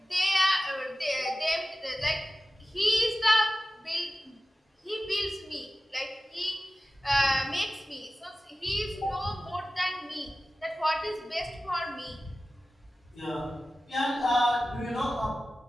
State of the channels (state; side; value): normal; both; correlation 0.95